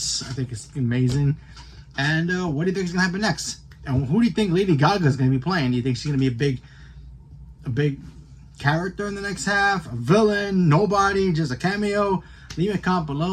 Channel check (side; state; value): both; identical; correlation 1.00